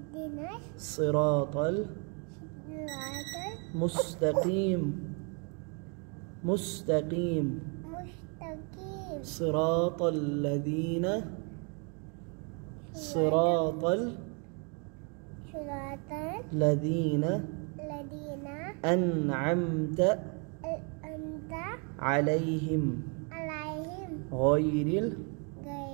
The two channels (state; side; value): quieter; left; 36.6 dB